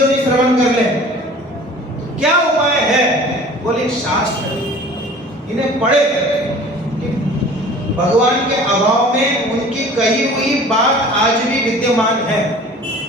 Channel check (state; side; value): normal; both; correlation 0.45